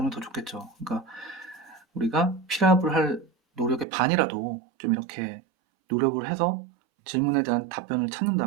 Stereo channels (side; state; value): left; drops out; at 3.9 s